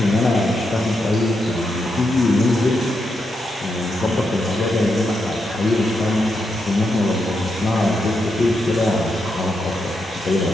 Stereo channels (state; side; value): normal; both; correlation 0.83